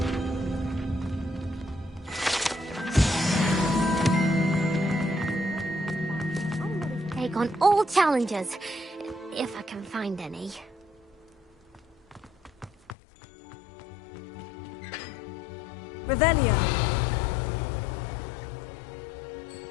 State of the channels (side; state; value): right; drops out; at 13.0 s